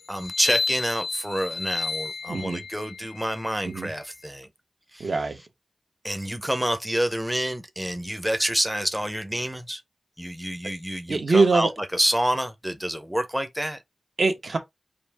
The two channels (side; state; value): both; normal; correlation 0.96